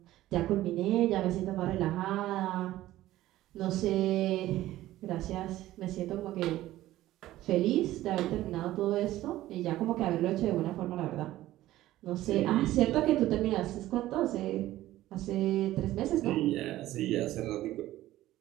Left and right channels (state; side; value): quieter; left; 15.2 dB